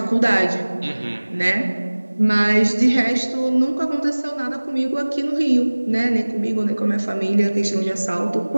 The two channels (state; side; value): inverted; both; correlation -1.00